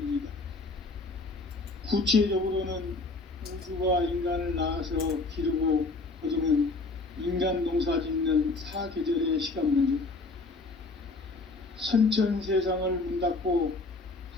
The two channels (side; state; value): right; quieter; 3.5 dB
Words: 구체적으로는 우주가 인간을 낳아서 기르고 거두는 인간 농사 짓는 사계절의 시간 문제. 선천 세상을 문 닫고